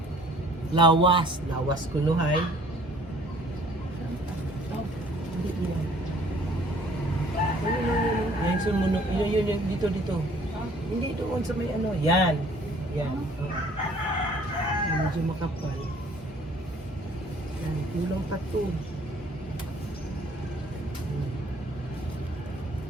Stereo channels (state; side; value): normal; both; correlation 0.56